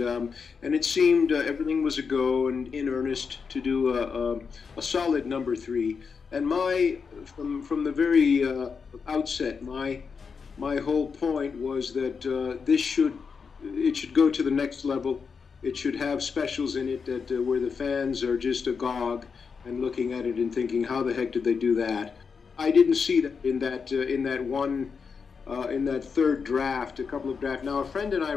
it seemed everything was a go and in earnest to do a solid number 3. And from the very outset, my whole point was that it should go to the next level. It should have specials in it that where the fans are just agog and looking at it and thinking, how the heck did they do that? I didn't see that in that third draft, a couple of drafts. Now, a friend and I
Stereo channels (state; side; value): quieter; right; 5.6 dB